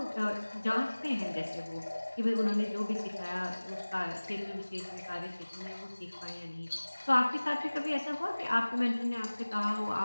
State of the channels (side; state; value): both; inverted; correlation -1.00